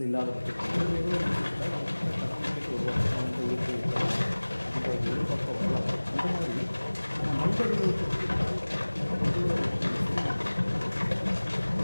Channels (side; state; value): both; inverted; correlation -1.00